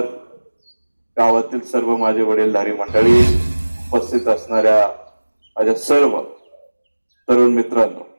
गावातील सर्व माझे वडीलधारी मंडळी, उपस्थित असणाऱ्या माझ्या सर्व तरुण मित्रांनो,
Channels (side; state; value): both; inverted; correlation -1.00